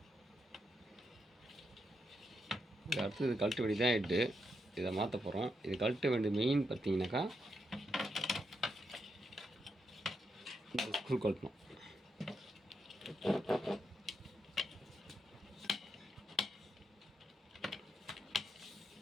அடுத்து இது கழட்ட வேண்டிய தான் ஹெட்டு. இதை மாற்ற போகிறோம். இது கழட்ட வேண்டிய மெயின் பார்த்தீங்கன்னாக்கா இந்த ஸ்க்ரூ கழட்டணும்.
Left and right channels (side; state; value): both; normal; correlation 0.82